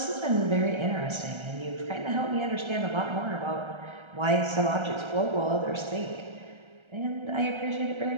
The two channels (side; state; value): left; late; 1.3 ms